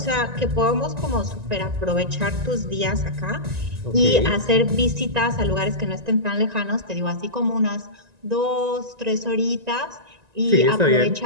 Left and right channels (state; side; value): late; left; 1.9 ms